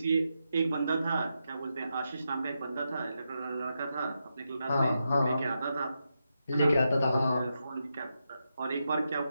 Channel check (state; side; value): inverted; both; correlation -0.86